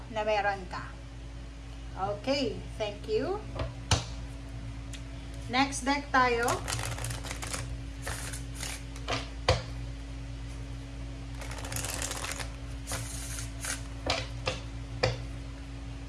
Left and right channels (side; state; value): both; identical; correlation 1.00